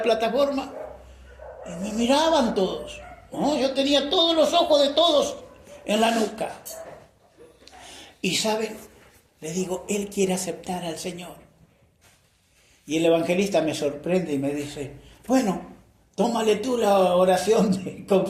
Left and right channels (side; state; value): both; identical; correlation 1.00